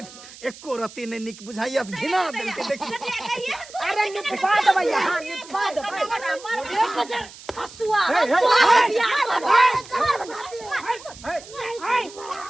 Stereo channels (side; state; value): right; noise; hiss, 18 dB below the sound